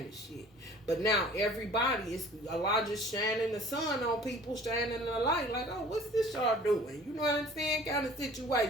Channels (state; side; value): normal; both; correlation 0.48